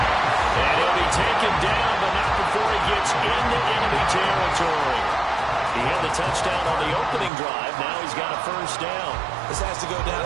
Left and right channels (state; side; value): drops out; left; at 7.3 s